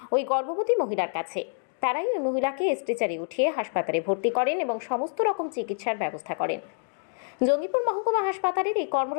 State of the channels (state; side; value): silent; right; digital silence